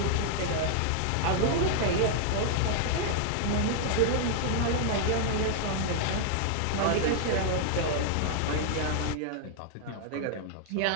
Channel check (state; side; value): different; both; correlation 0.00